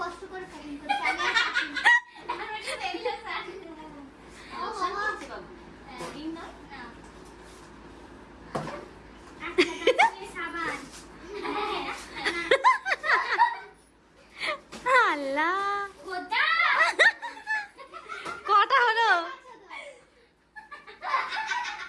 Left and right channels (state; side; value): identical; both; correlation 1.00